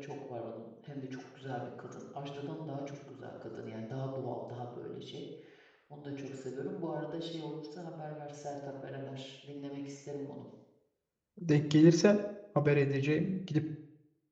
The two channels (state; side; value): identical; both; correlation 1.00